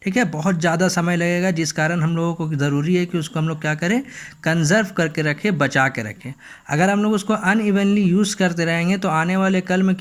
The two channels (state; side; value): identical; both; correlation 1.00